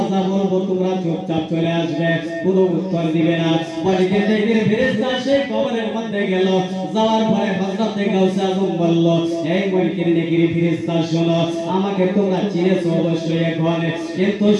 যা বলবো তোমরা চুপচাপ চলে আসবে, কোনো উত্তর দিবে না। মুনকির নেকির ফেরেশতা সেই কবরের মধ্যে গেল। যাওয়ার পরে হযরতে গাউসে আজম বলল, এই মুনকির নেকির ফেরেশতা শোনো, আমাকে তোমরা চিনেছো অবশ্যই এখন, কিন্তু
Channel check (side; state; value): both; identical; correlation 1.00